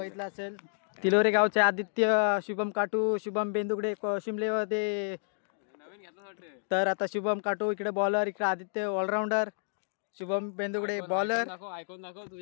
असेल. तिलोरे गावचे आदित्य, शुभम काटू, शुभम बेंदुगडे शिमलेमध्ये. तर आता शुभम काटू इकडे बॉलर, इकडे Aditya allrounder, Shubham Bendugade bowler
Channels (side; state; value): right; silent; digital silence